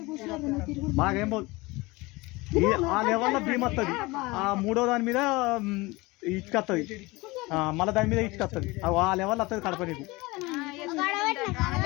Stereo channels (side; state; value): right; quieter; 22.8 dB